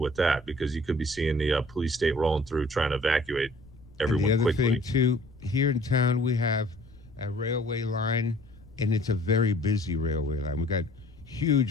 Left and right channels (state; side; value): noise; left; rumble, 23 dB below the sound